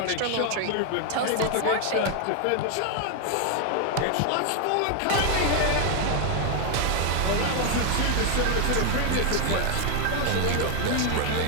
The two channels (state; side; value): different; both; correlation 0.01